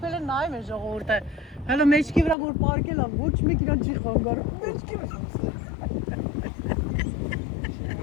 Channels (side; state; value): right; drops out; at 2.4 s